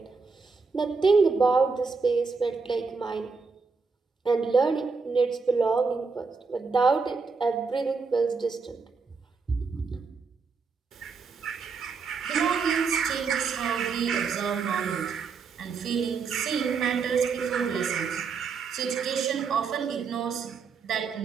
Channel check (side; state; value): left; quieter; 4.9 dB